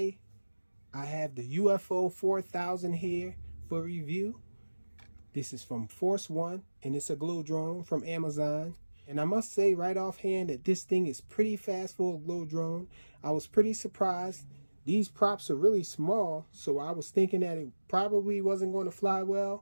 I have the UFO 4000 here for review. This is from Force One, and it's a glow drone from Amazon. And I must say right offhand that this thing is pretty fast for a glow drone. I was pretty surprised. These props are really small, so I was thinking that it probably wasn't going to fly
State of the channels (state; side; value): inverted; both; correlation -1.00